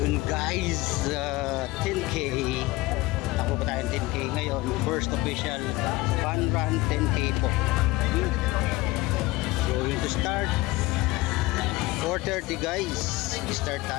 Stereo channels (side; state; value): right; quieter; 20.1 dB